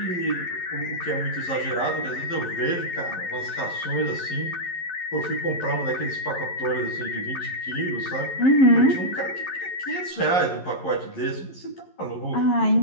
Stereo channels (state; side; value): late; right; 11 ms